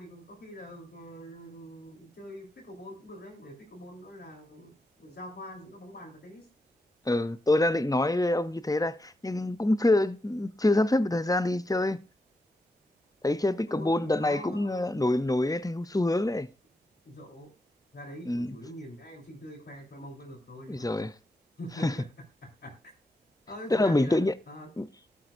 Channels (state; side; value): normal; both; correlation 0.84